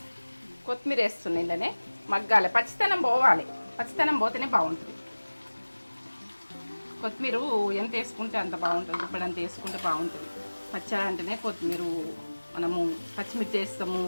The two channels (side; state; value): both; inverted; correlation -1.00